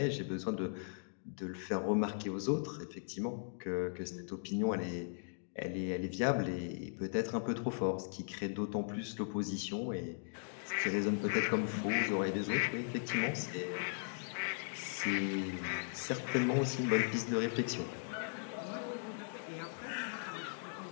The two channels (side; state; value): right; silent; digital silence